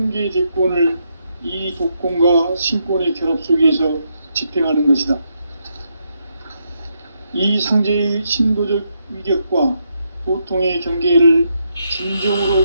대권을 이 독권과 신권의 결합 속에서 집행하는 것이다. 이 상제의 신도적 위격과 보통의 경계를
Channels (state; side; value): inverted; both; correlation -0.79